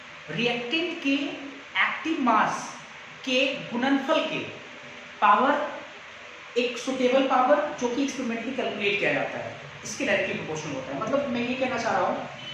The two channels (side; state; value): both; identical; correlation 1.00